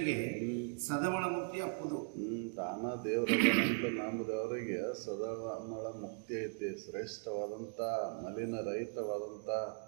ಸದಮಳ ಮುಕ್ತಿ ಅಪ್ಪುದು. ತಾನ ದೇವರಂತ ನಂಬಿದವರಿಗೆ ಸದಮಳ ಮುಕ್ತಿ ಐತಿ, ಶ್ರೇಷ್ಠವಾದಂಥ ಮಲಿನ ರಹಿತವಾದಂಥ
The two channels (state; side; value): silent; left; 52 dB below the other